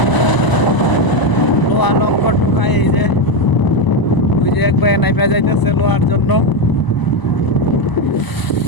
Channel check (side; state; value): right; late; 1.0 ms